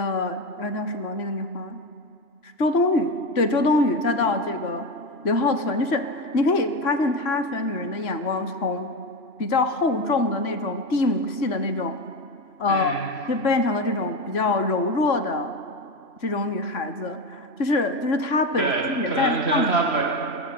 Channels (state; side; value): late; right; 3.0 ms